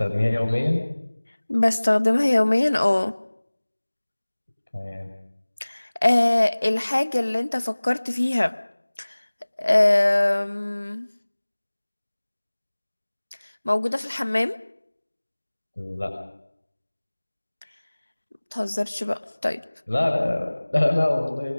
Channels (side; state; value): both; inverted; correlation -1.00